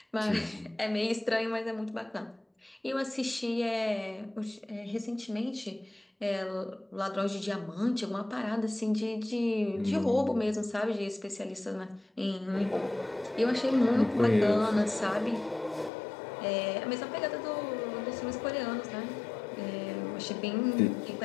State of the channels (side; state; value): right; drops out; at 15.9 s